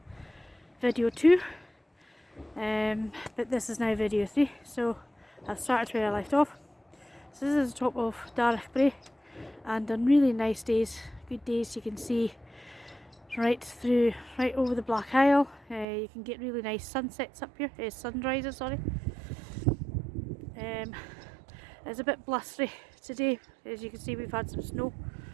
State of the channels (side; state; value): left; drops out; at 15.9 s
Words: video 2, but this is now video 3, so I've started where I left off. So this is the top of Darroch, Brae, and on really nice days, good days, you can see right over the Black Isle. You can get really nice sunsets up here, sunrises, sorry. It's a bit blustery today. As you can see, we've had some snow.